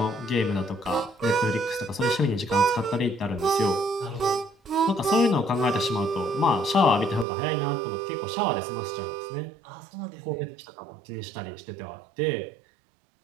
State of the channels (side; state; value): left; drops out; at 7.2 s